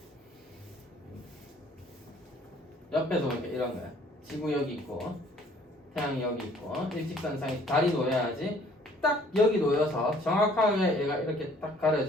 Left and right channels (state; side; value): normal; both; correlation 0.58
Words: 옆에서 보니까 이런 거야. 지구 여기 있고 태양이 여기 있고 일직선상에 달이 놓여야지 딱 여기 놓여서 정확하게 얘가 이렇게 딱